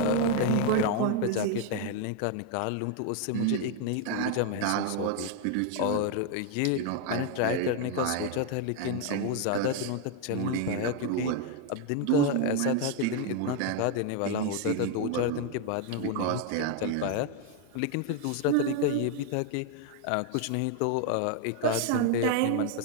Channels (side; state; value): both; different; correlation 0.01